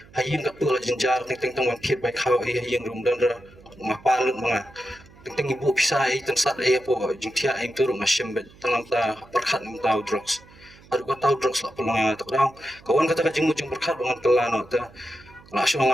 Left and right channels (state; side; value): noise; right; hum, 24 dB below the sound